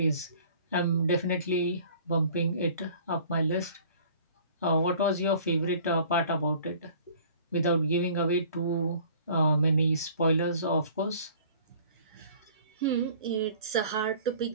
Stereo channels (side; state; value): both; inverted; correlation -0.50